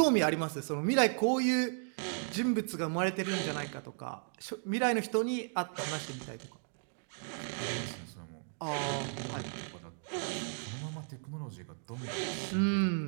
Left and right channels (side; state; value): left; silent; 55 dB below the other